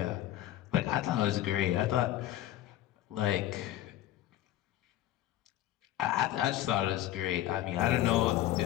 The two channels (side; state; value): right; quieter; 13.6 dB